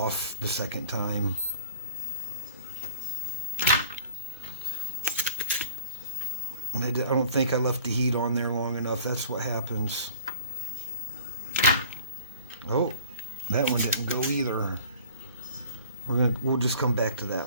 the second time. I don't think I left the heat on there long enough. That's what happens. Oh, that one didn't go either. We'll just come back to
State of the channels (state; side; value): inverted; both; correlation -0.49